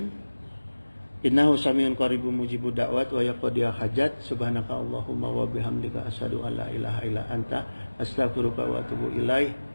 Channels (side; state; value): both; inverted; correlation -1.00